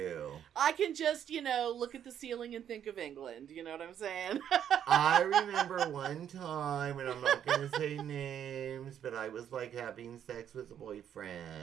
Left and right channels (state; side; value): quieter; left; 9.5 dB